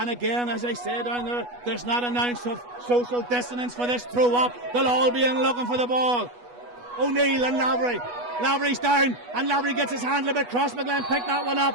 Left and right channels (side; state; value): left; late; 8.2 ms